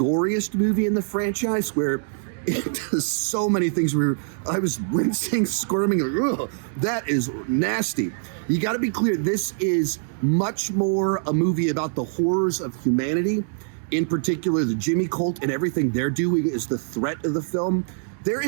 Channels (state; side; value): silent; left; digital silence